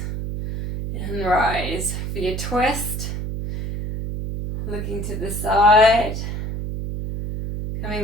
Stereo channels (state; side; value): noise; right; hum, 5 dB below the sound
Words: and rise for your twist, looking to the side, coming